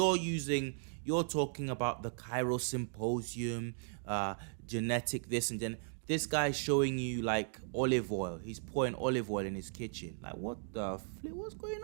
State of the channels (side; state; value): left; silent; digital silence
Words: talking about the Cairo Symposium, genetic this and then this guy's showing you like olive oil. He's pouring olive oil in his kitchen. Like, what the flip? What's going